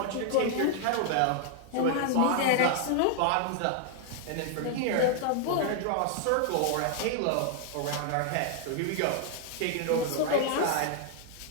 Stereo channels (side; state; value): both; different; correlation 0.00